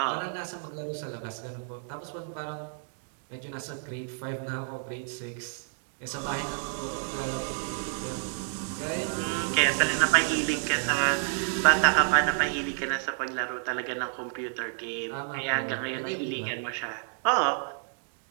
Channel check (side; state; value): left; silent; digital silence